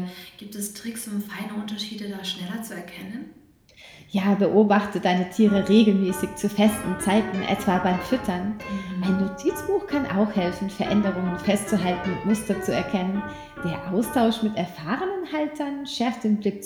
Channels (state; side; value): identical; both; correlation 1.00